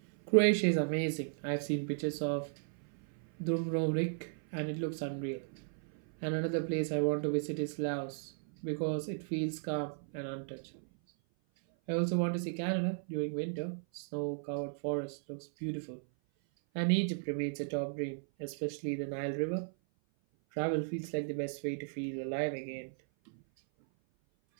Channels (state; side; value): silent; left; 54 dB below the other